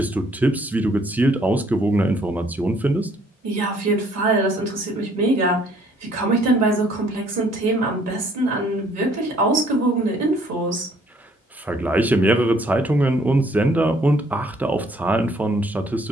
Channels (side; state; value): both; normal; correlation 0.62